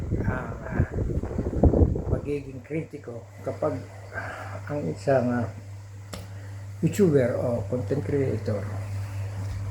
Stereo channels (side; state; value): both; identical; correlation 1.00